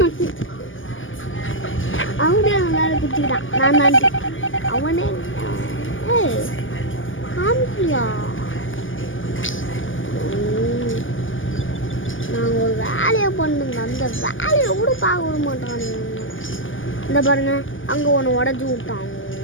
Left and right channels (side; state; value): right; late; 0.58 ms